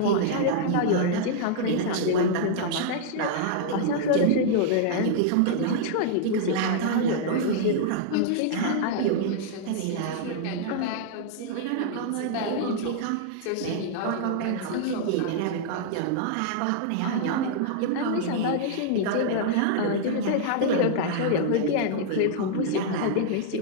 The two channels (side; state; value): both; different; correlation -0.01